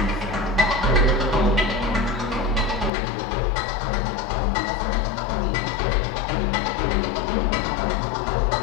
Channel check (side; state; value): right; drops out; at 2.9 s